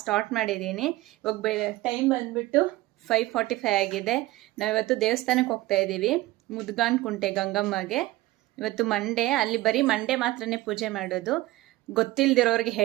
ಸ್ಟಾರ್ಟ್ ಮಾಡಿದ್ದೀನಿ. ಇವಾಗ ಟೈಮ್ ಬಂದುಬಿಟ್ಟು 5:45 ಆಗಿದೆ. ನಾವಿವತ್ತು ದೇವಸ್ಥಾನಕ್ಕೆ ಹೋಗ್ತಾ ಇದ್ದೀವಿ, ಮುದ್ಗಾನ್ ಕುಂಟೆ ಗಂಗಮ್ಮಗೆ. ಇವತ್ತು ಮಂಡೇ, ಅಲ್ಲಿ ಬರೀ ಮಂಡೇ ಮಾತ್ರನೇ ಪೂಜೆ ಮಾಡೋದು. ಗೊತ್ತಿಲ್ಲದಿರೋರಿಗೆ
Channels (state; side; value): quieter; left; 18.0 dB